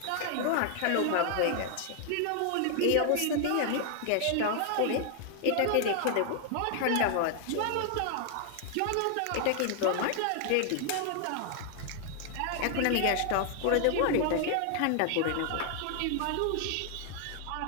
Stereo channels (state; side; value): different; both; correlation 0.00